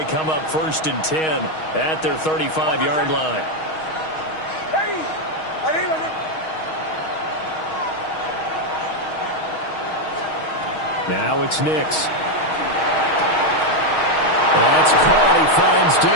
come up first and 10 at their 35-yard line. Now it's Nix. That's caught. He finds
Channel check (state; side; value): late; right; 6.3 ms